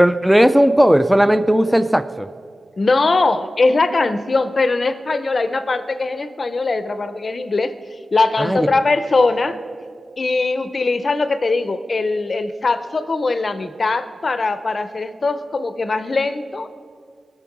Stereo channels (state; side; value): normal; both; correlation 0.96